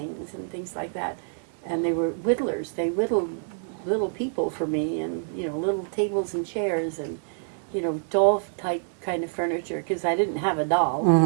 and things like that. And they were whittlers. They whittled little people for me, and little tables and chairs, and doll type kind of furniture. Because I didn't have a doll.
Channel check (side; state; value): left; silent; digital silence